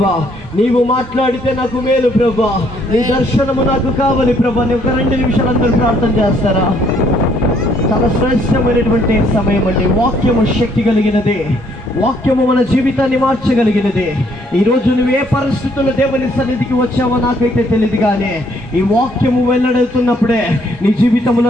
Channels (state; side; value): normal; both; correlation 0.67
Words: నీవు మాట్లాడితే నాకు మేలు ప్రభా, నీ దర్శనము నాకు కావాలి ప్రభా. నీ ఒక 2 నిమిషాలు అందరూ ప్రార్థన చేస్తారా? చాలా శ్రేష్టమైనటువంటి సమయం అండి. వాక్యము శక్తి కలిగినది. వాక్యము మన జీవితాన్ని మార్చగలిగినది. ఈరోజు నువ్వు ఏ పరిస్థితుల్లో దేవుని సన్నిధికి వచ్చావో నాకైతే తెలియదు, కానీ ఈ వాక్యము వెల్లడవుతున్నప్పుడే నీ